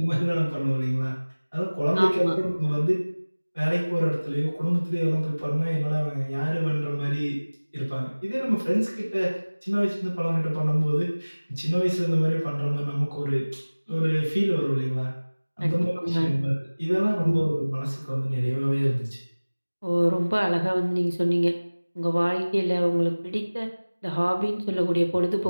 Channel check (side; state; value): both; inverted; correlation -1.00